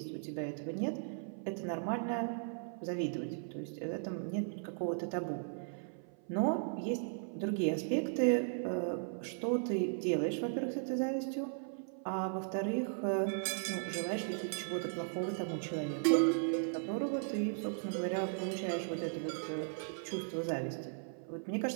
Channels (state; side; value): silent; left; 53 dB below the other